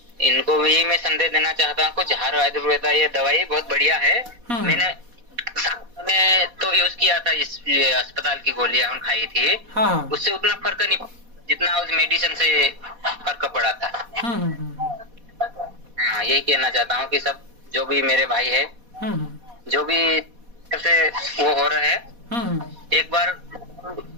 इनको भी मैं संदेश देना चाहता हूँ, कुछ झार आयुर्वेदा ये दवाई बहुत बढ़िया है। मैंने तो यूज किया था, इस अस्पताल की गोलियां खाई थी, उससे उतना फर्क नहीं जितना उस मेडिसिन से फर्क पड़ा था। हाँ, यही कहना चाहता हूँ कि सब जो भी मेरे भाई है, जो भी से वो हो रहा है, एक बार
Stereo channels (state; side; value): late; left; 4.1 ms